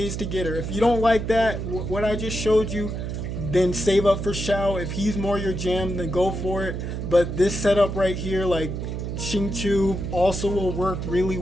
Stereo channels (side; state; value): right; noise; hum, 4 dB below the sound